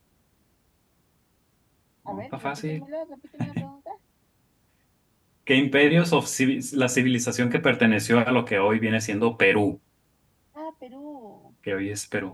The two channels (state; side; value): identical; both; correlation 1.00